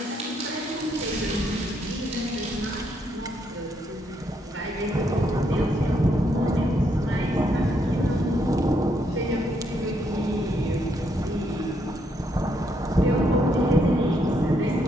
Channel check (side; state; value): both; normal; correlation 0.75